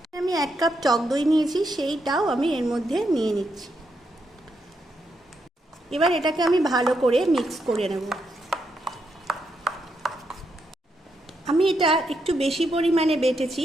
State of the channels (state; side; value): normal; both; correlation 0.81